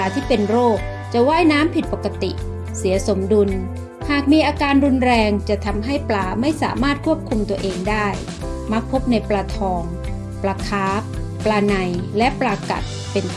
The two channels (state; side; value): identical; both; correlation 1.00